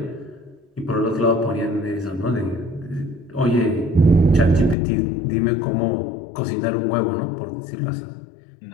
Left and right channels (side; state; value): right; drops out; at 4.8 s